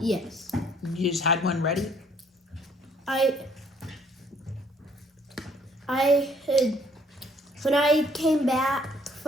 Yes. You just had one ready? I had, when I came back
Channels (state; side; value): normal; both; correlation 0.63